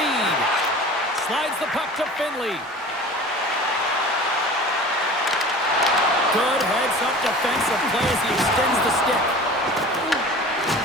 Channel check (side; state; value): both; normal; correlation 0.40